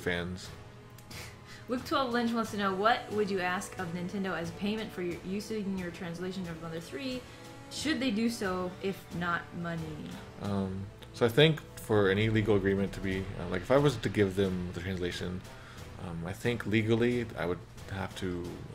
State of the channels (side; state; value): both; identical; correlation 1.00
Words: Luke 12 Lynch wants to know, what would you ask of Nintendo as payment for using your translation of Mother 3? Should they do so, if not money? So I think for any legal agreement to be like, if I was to give them the translation, I think legally I would have to,